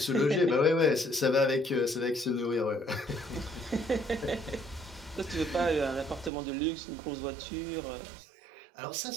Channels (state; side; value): drops out; left; at 6.3 s